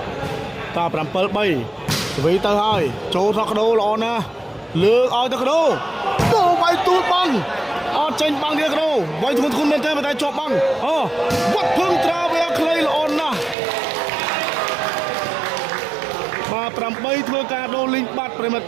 តា7-3ស្វីទៅហើយចូលថកដោល្អណាស់លើកឲ្យទៅកដោវាយទូតបាំងអត់ចេញបាំងទៀតកដោវាយធ្ងន់មែនទេតែជាប់បាំងអូវត្តភឹងត្រាវាខ្លីល្អណាស់ បាទ 8 ធ្វើការដូរលីងបាត់ប្រិមិត្ត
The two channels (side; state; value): left; drops out; at 13.6 s